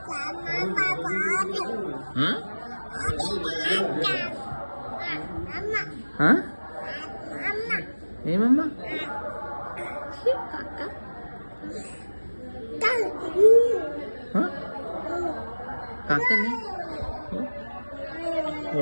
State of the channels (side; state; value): both; inverted; correlation -1.00